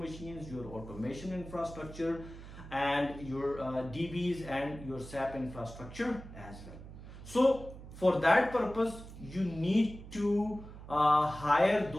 your automation infrastructure, and your DBs and your SAP infrastructure as well. So for that purpose, you need to hire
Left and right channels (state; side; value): noise; right; hum, 14 dB below the sound